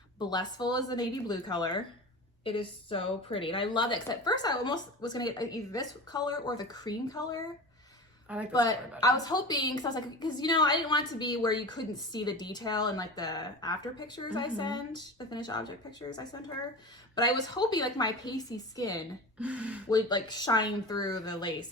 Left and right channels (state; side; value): normal; both; correlation 0.31